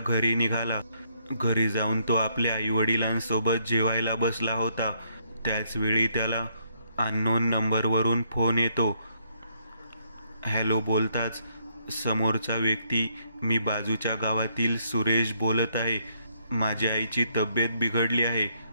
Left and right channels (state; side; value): inverted; both; correlation -0.72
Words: निघाला। घरी जाऊन तो आपल्या आईवडिलांसोबत जेवायला बसला होता। त्याच वेळी त्याला अननोन नंबरवरून फोन येतो। हॅलो बोलताच समोरचा व्यक्ती, मी बाजूच्या गावातील सुरेश बोलत आहे। माझ्या आईची तब्येत बिघडली आहे।